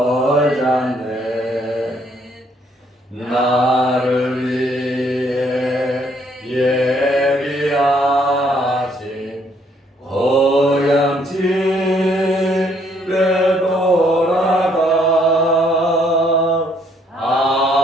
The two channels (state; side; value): normal; both; correlation 0.67